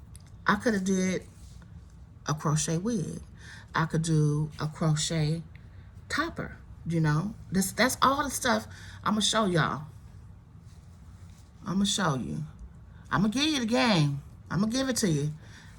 could have did a crochet wig. I could do a crochet topper. You know, that's all the stuff I'm gonna show y'all. I'm gonna show you. I'm gonna give you the game. I'm gonna give it to you.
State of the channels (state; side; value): identical; both; correlation 1.00